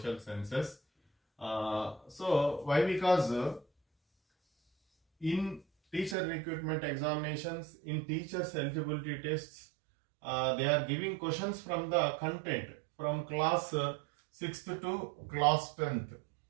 sciences. So why? Because in teacher recruitment examinations, in teachers eligibility tests, they are giving questions from the content from class 6th to class 10th.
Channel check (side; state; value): left; drops out; at 6.2 s